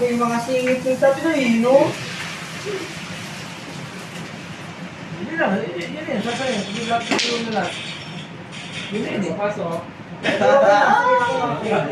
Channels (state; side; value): identical; both; correlation 1.00